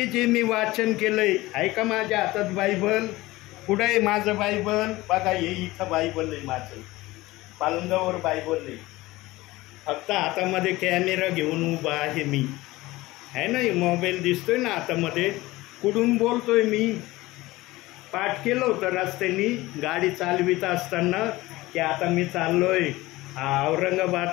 जे मी वाचन केलंय. ऐका, माझ्या हातात बायबल. कुठं आहे माझं बायबल? बघा, हे इथं बायबल आहे माझं, पालंगावर बायबल आहे. फक्त हातामध्ये कॅमेरा घेऊन उभा आहे मी, आहे ना. मोबाईल दिसतोय ना हातामध्ये. कुठून बोलतोय मी? पाठ केलं होतं रस्त्याने गाडी चालवित असताना की आता मी चाललोय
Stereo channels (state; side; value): quieter; right; 19.2 dB